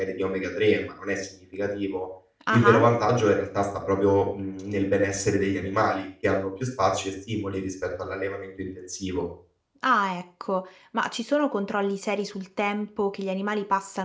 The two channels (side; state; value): both; identical; correlation 1.00